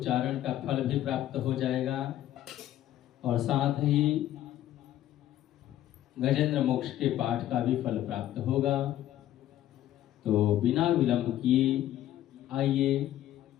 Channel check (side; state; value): right; quieter; 12.8 dB